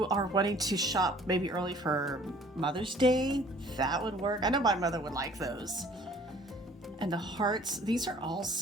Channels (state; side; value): normal; both; correlation 0.54